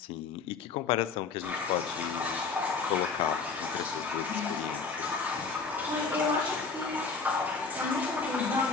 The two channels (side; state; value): right; quieter; 4.9 dB